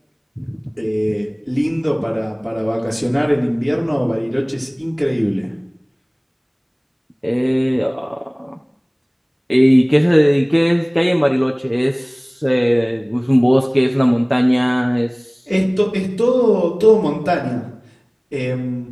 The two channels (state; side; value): identical; both; correlation 1.00